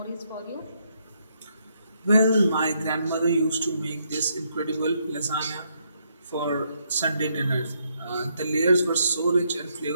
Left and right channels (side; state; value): both; inverted; correlation -0.76